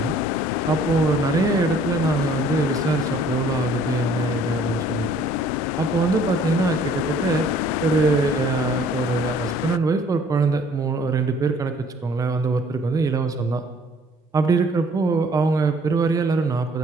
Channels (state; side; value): normal; both; correlation 0.57